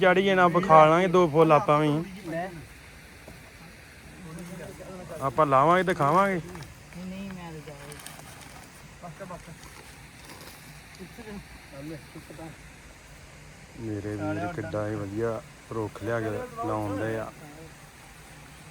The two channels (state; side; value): identical; both; correlation 1.00